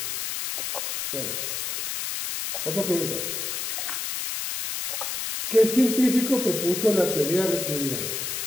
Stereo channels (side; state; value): left; noise; hiss, 3 dB below the sound